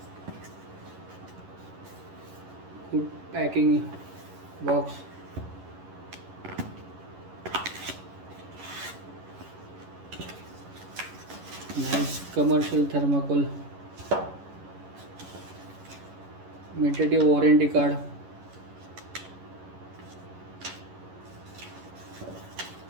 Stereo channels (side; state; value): left; late; 11 ms